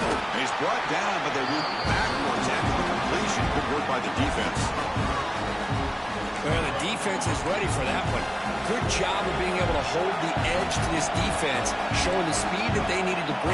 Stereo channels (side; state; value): both; identical; correlation 1.00